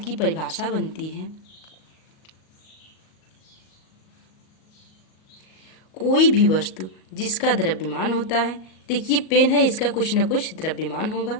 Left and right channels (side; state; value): right; late; 38 ms